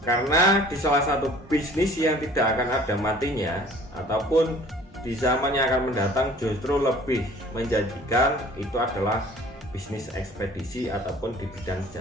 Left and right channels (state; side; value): normal; both; correlation 0.50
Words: Karena di salah satu bisnis yang tidak akan ada matinya ataupun di zaman yang akan mendatang justru lebih menjanjikan itu adalah bisnis ekspedisi ataupun di bidang